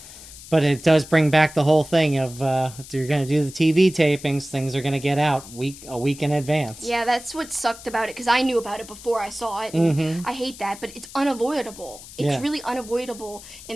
it does bring back the whole thing of if you're going to do the TV tapings, things are going to get out a week in advance. Yeah, that's what sucked about it, because I knew about it before I saw it. And I hate that, but it's unavoidable. It's really unavoidable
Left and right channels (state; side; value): noise; left; hiss, 17 dB below the sound